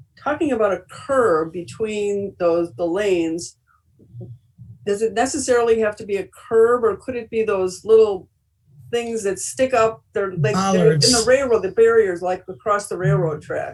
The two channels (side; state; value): both; identical; correlation 1.00